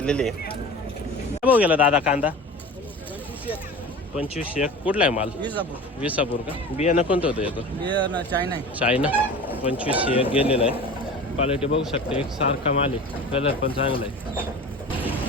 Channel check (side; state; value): both; normal; correlation 0.36